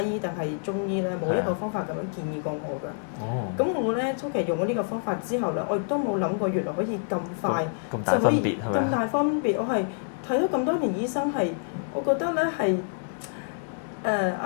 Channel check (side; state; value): right; silent; digital silence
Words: 醫定係中醫咧，冇一個方法咁樣建議過我㗎。咁我咧初期用咗呢個方法之後咧，我亦都冇諗過原來可以咁快就可以咁大分別。我係睇咗咁多年醫生係，我覺得咧係